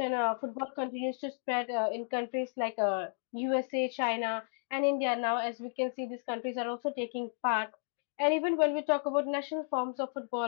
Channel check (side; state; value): right; silent; digital silence